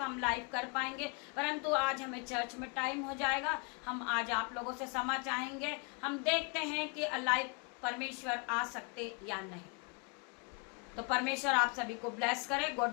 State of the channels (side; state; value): right; quieter; 33.5 dB